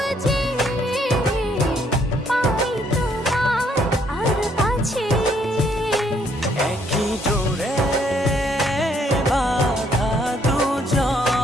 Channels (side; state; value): both; normal; correlation 0.69